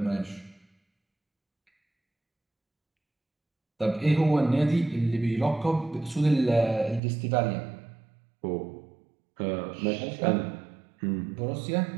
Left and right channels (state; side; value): drops out; left; at 7.0 s